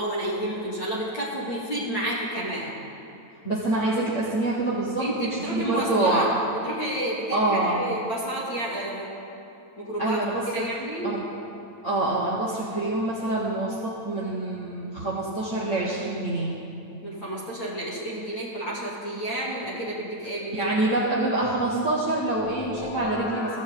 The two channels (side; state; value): right; late; 9.0 ms